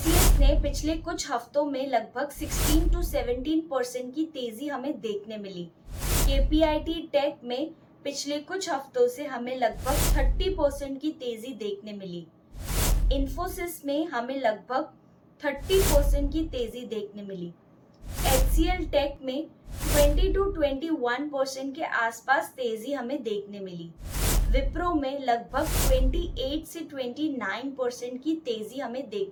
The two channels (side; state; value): both; identical; correlation 1.00